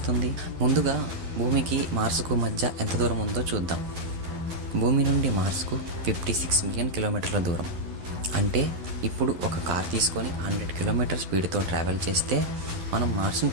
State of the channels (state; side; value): late; left; 11 ms